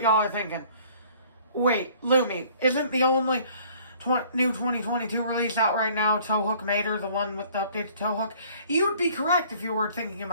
are thinking. Wait, Lemme, isn't the only new 2022 release out right now Towhook Mater, the one with the updated towhook? You would be correct if you were thinking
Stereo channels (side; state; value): both; inverted; correlation -0.55